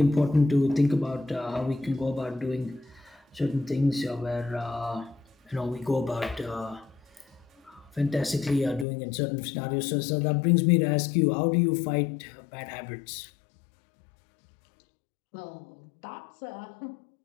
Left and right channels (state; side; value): drops out; right; at 8.8 s